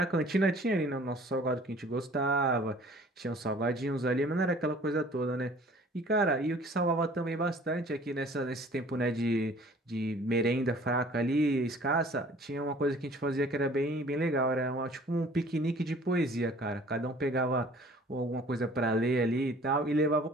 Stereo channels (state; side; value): normal; both; correlation 0.51